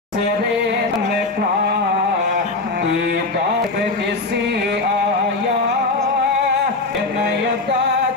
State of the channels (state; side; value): quieter; right; 3.4 dB